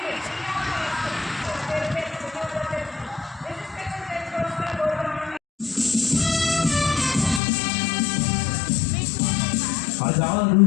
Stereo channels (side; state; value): right; drops out; at 7.4 s